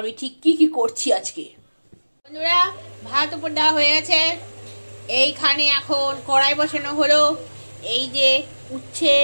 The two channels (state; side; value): inverted; both; correlation -1.00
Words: ঠিক কি কি করছি আজকে। বন্ধুরা ভাত উপর দেওয়া হয়ে গেছে, এইখানে এখন কড়াই বসানো হলো। এই যে উচ্ছে